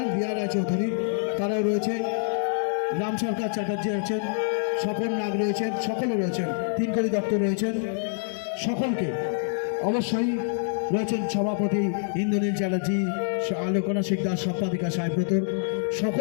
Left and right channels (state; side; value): silent; right; digital silence